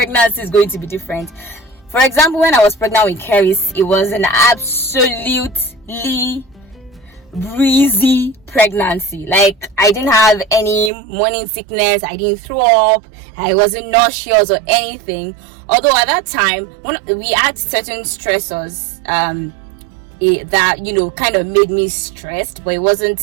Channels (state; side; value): drops out; left; at 10.9 s